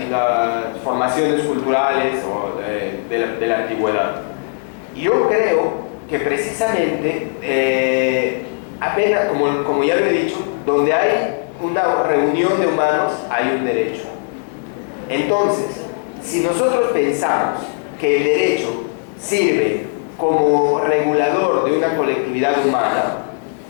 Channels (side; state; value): right; silent; digital silence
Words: formaciones culturales o de la antigüedad. Yo creo que precisamente, apenas, como ya lo he dicho, donde hay una reunión de humanos, hay un derecho. Entonces, si nosotros pensamos que el derecho sirve como regulador de una colectividad humana,